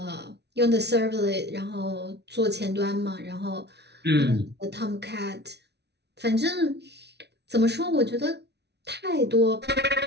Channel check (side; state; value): left; late; 0.49 ms